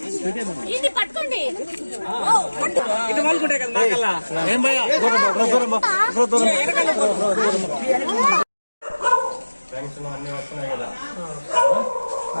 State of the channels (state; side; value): inverted; both; correlation -1.00